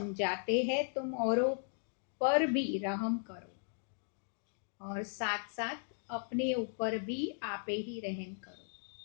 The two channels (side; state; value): right; silent; digital silence